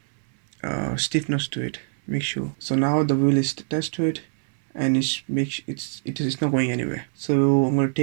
stiffness to it. Make sure. So now the wheel is attached to it and it's not going anywhere. So I'm going to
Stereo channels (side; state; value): left; silent; 62 dB below the other